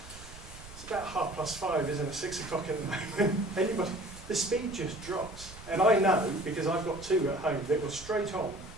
it's about 5:30, isn't it? 6 o'clock at the moment. The speed just drops. And I know, because I've got 2 at home, that were straight on,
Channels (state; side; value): noise; right; rumble, 16 dB below the sound